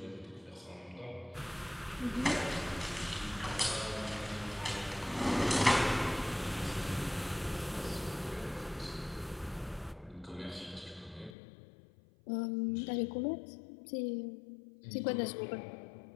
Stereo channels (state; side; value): drops out; right; at 11.4 s